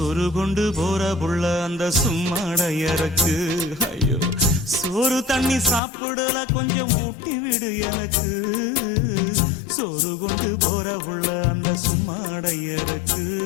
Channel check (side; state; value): right; drops out; at 5.8 s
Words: கொண்டு போற புள்ள அந்த சும்மாடையறக்கு ஐயோ சோறு தண்ணி சாப்பிடல கொஞ்சம் ஊட்டி விடு எனக்கு சோறு கொண்டு போற புள்ள அந்த சும்மாடையறக்கு